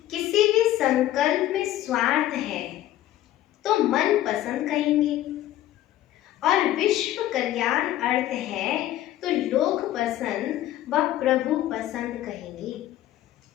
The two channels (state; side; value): quieter; right; 13.6 dB